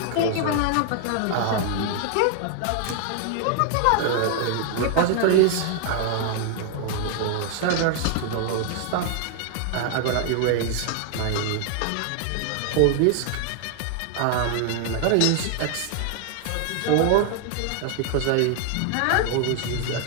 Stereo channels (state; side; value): different; both; correlation 0.00